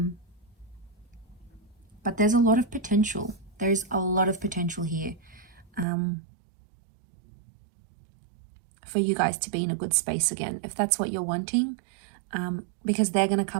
But there's a lot of potential. There's a lot of potential here. For you guys to be in a good space again, if that's what you're wanting, because they're going to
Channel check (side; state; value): left; drops out; at 5.9 s